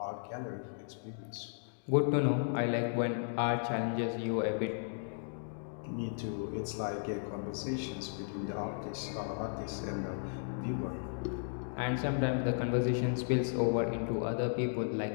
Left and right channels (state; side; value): silent; right; digital silence